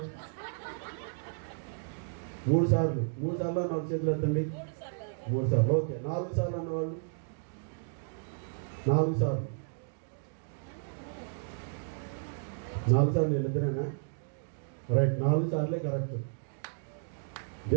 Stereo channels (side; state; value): left; silent; digital silence